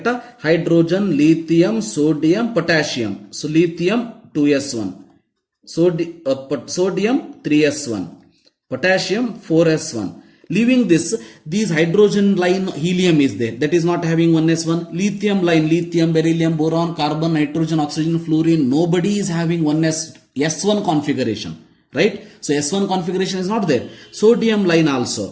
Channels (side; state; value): both; identical; correlation 1.00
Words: Hydrogen, lithium, sodium, potassium. So lithium 2s1. Sodium 3s1. Potassium 4s1. Leaving this, these hydrogen line helium is there. That is not having 1s1. Lithium line, lithium, beryllium, boron, carbon, nitrogen, oxygen, fluorine. Nobody is having S1 configuration. Right? So S1 configuration is not there. Sodium line